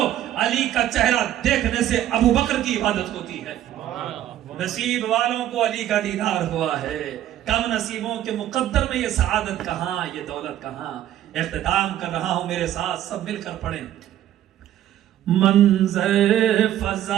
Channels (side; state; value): left; quieter; 12.3 dB